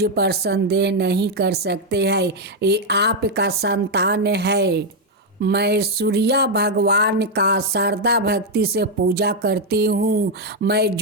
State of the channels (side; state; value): both; normal; correlation 0.02